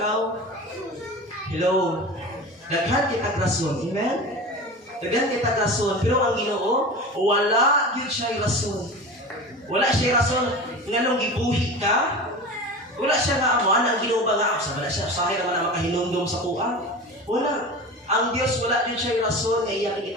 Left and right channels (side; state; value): both; normal; correlation 0.31